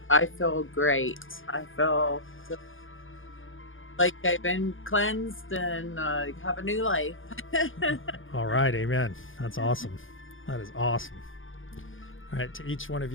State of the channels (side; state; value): right; late; 0.58 ms